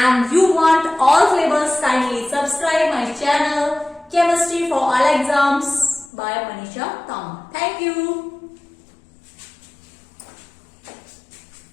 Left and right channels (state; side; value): drops out; right; at 6.1 s